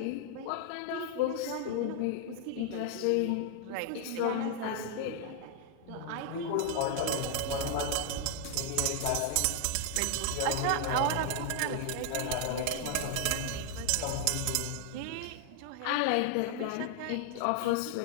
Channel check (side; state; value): both; different; correlation 0.00